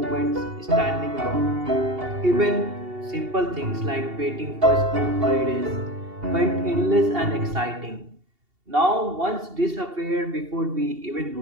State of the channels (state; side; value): late; left; 2.7 ms